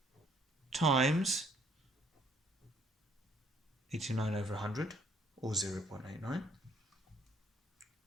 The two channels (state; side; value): normal; both; correlation 0.64